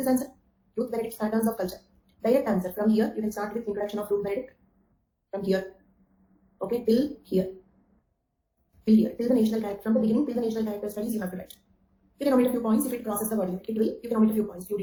answer? Ruth Benedict's patterns of culture. Direct answer. From here, you can start with introduction of Ruth Benedict. From here. Okay, till here. Till here. Till the national character. From the beginning till the national character studies, you have to write. You can omit a few points if it crosses the word limit. It will. You can omit a few points, few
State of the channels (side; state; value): both; identical; correlation 1.00